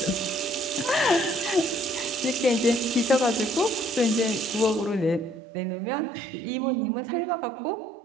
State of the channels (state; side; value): drops out; left; at 5.4 s